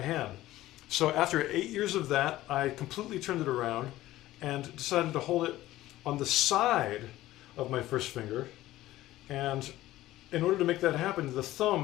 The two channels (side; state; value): right; quieter; 15.7 dB